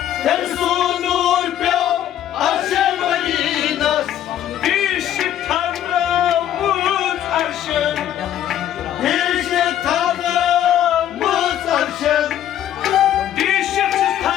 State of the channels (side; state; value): right; quieter; 11.2 dB